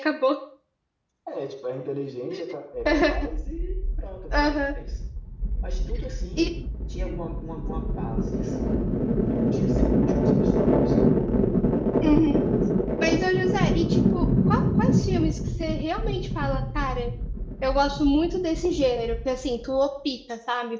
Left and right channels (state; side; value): identical; both; correlation 1.00